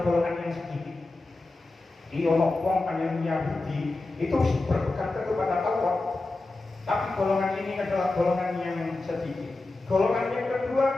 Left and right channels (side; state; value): right; quieter; 3.2 dB